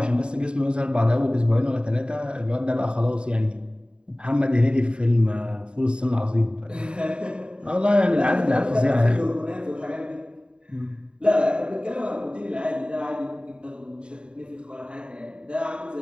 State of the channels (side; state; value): left; late; 0.052 ms